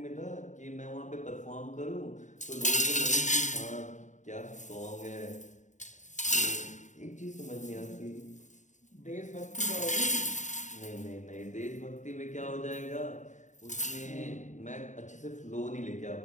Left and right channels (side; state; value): right; late; 0.35 ms